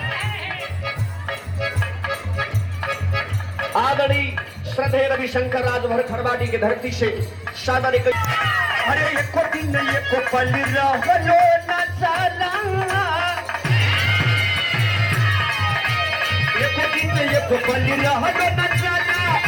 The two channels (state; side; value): identical; both; correlation 1.00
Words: आदरणीय श्रद्धेय रविशंकर राजभर खरवाड़ी की धरती से सादा ने अरे एको दिन एको पल रहलो न चला एको दिन एको पल रहलो न चला